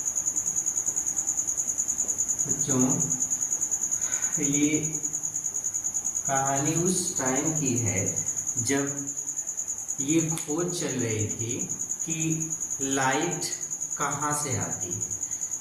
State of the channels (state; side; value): identical; both; correlation 1.00